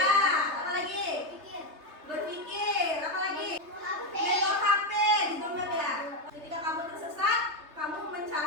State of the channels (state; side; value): late; left; 3.3 ms